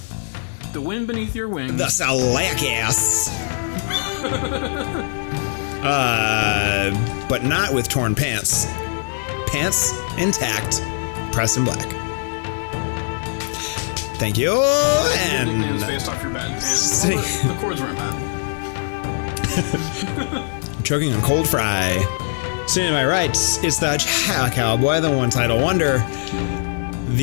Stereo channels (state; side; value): silent; right; digital silence